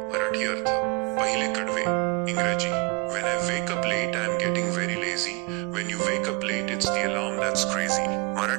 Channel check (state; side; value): quieter; left; 29.2 dB